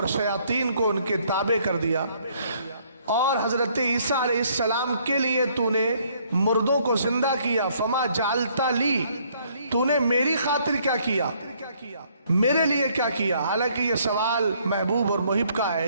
شیاطین کو ان کے تابع کر دیا، اور حضرت عیسیٰ علیہ السلام کے لیے تو نے مردوں کو زندہ کیا۔ فما جعلت لی، تو نے میری خاطر کیا کیا، میرے لیے کیا کیا؟ حالانکہ یہ سوال محبوب اور محب کا ہے،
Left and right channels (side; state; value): both; inverted; correlation -0.65